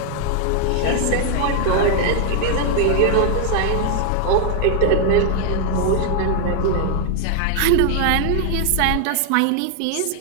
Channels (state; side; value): different; both; correlation 0.00